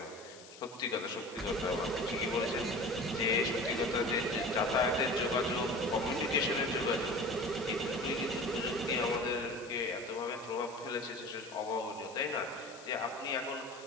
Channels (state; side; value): noise; left; hiss, 19 dB below the sound